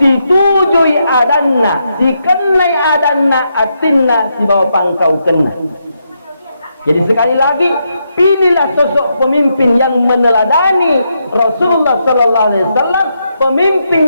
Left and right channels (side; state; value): both; inverted; correlation -0.81